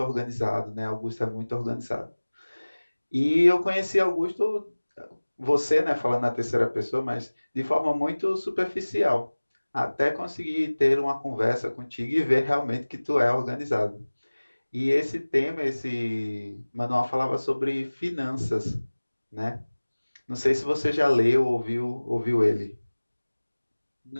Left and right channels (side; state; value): both; inverted; correlation -1.00